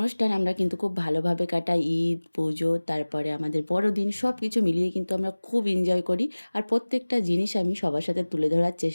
আমরা কিন্তু খুব ভালোভাবে কাটাই, ঈদ, পুজো, তারপরে আমাদের বড়দিন, সব কিছু মিলিয়ে কিন্তু আমরা খুব এনজয় করি। আর প্রত্যেকটা জিনিস আমি সবার সাথে তুলে ধরার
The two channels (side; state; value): both; inverted; correlation -1.00